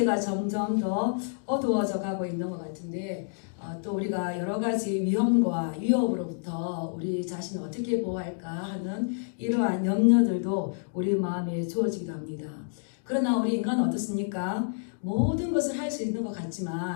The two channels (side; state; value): right; silent; digital silence